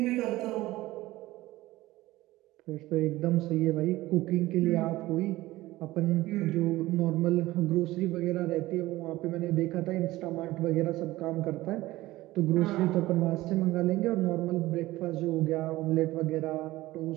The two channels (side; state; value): left; quieter; 17.7 dB